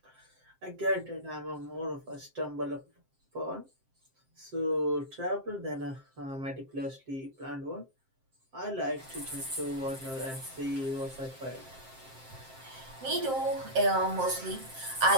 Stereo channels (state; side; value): late; left; 7.6 ms